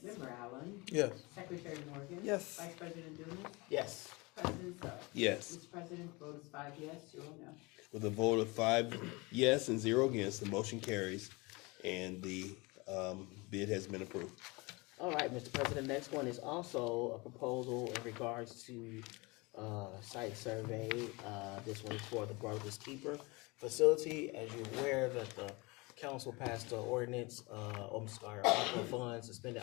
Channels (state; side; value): quieter; right; 25.5 dB